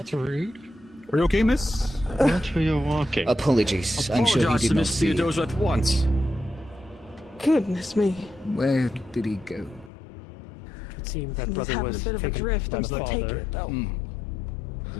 rude. Are you okay, miss? Watch where you're walking. Apologies. I'm sure he did not see you. Theodosius at once. Goodness me. Where did he go? It seemed that He's brother having was a bit of a taken drift. by I'm the still taking father. it, though.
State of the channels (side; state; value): right; drops out; at 9.9 s